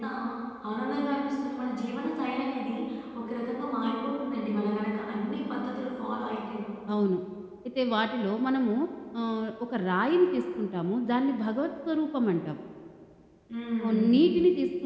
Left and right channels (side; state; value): both; identical; correlation 1.00